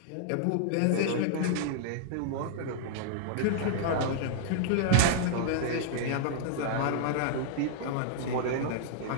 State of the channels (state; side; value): different; both; correlation -0.01